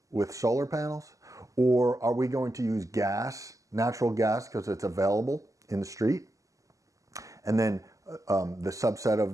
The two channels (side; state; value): left; late; 0.16 ms